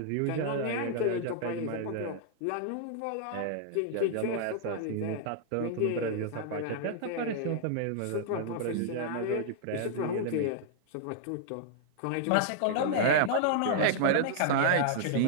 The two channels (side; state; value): both; different; correlation -0.01